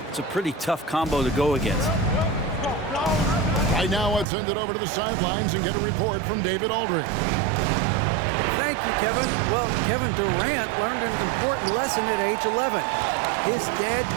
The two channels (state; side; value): drops out; left; at 4.2 s